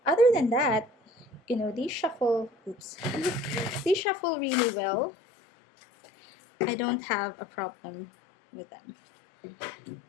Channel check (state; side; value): drops out; right; at 4.0 s